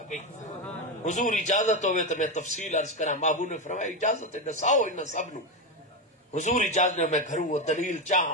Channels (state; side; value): normal; both; correlation 0.12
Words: گئی. حضور اجازت ہوئے تو میں تفصیل عرض کراں. محبوب نے فرمایا اجازت ہے دساؤ انہاں سب نو. حضور اجازت نے میں گھروں وہ دلیل